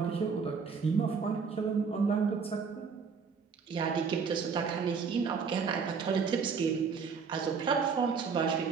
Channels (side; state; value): left; quieter; 5.6 dB